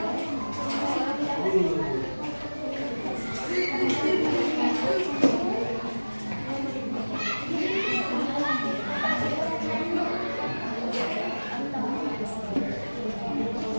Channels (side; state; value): both; inverted; correlation -1.00